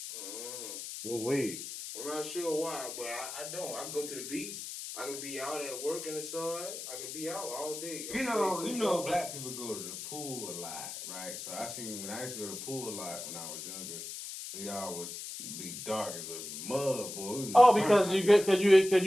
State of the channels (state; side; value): noise; left; hiss, 8 dB below the sound